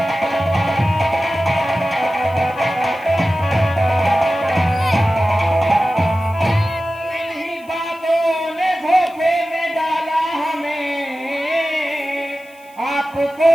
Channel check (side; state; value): right; noise; hiss, 28 dB below the sound